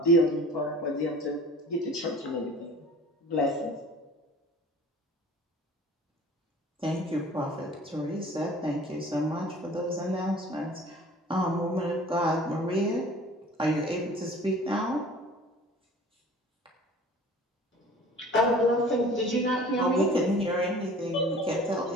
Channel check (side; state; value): both; normal; correlation 0.46